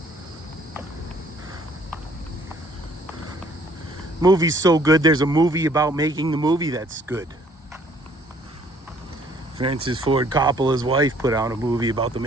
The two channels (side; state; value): both; normal; correlation 0.60